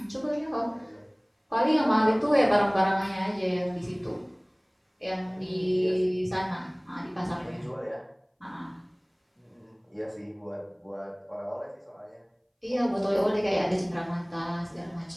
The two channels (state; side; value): identical; both; correlation 1.00